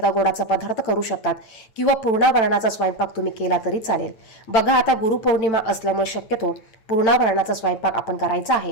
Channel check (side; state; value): right; late; 8.9 ms